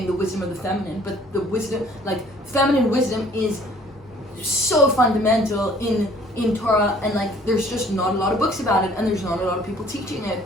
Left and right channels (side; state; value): both; normal; correlation 0.56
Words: the wisdom of the feminine, but the wisdom, like feminine wisdom, is so fundamental in Torah, and like there's just not a lot of books about it, and there's not a lot of people teaching it.